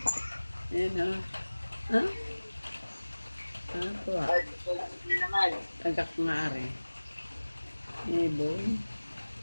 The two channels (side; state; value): both; inverted; correlation -1.00